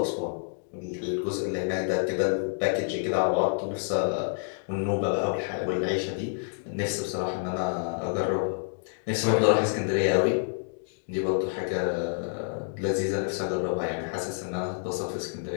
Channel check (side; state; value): right; silent; digital silence